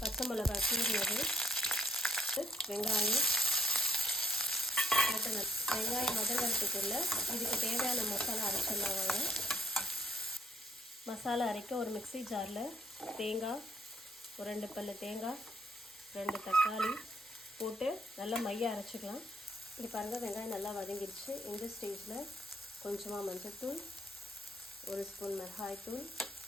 பச்சை மிளகாய் கீறினது, வெங்காயம் வெங்காயம் வதங்கிறதுக்குள்ள இதுக்கு தேவையான மசாலா அரைச்சிடலாம் வாங்க. மசாலா அரைக்க ஒரு மிக்ஸி ஜாரில் தேங்காய், ஒரு 2 பல்லு தேங்காய், 2 தக்காளி போட்டு நல்லா மைய அரைச்சிக்கலாம். இது பாருங்கள், வெங்காயம் நல்லா வதங்கிடுச்சு. இந்த ஸ்டேஜில் கொஞ்சமாக மஞ்சள்தூள், 1 ஸ்பூன் மிளகாய்த்தூள்,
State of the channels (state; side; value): normal; both; correlation 0.66